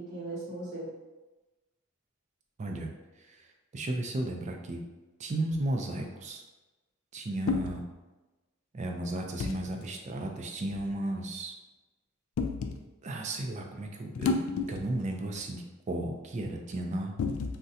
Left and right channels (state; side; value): normal; both; correlation 0.60